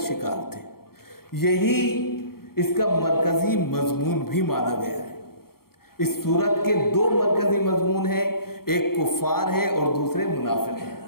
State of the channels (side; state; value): right; late; 0.94 ms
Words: تھے. یہی اس کا مرکزی مضمون بھی مانا گیا ہے. اس سورت کے 2 مرکزی مضمون ہیں. ایک کفار ہے اور دوسرے منافق ہیں۔